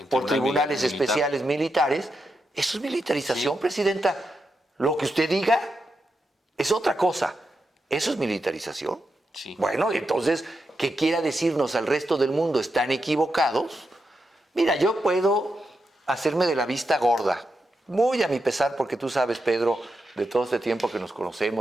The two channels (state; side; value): normal; both; correlation 0.86